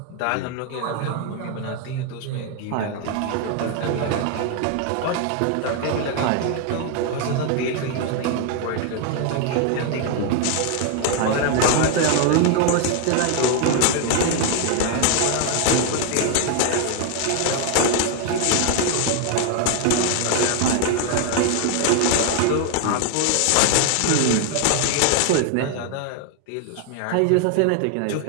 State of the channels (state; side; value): different; both; correlation 0.00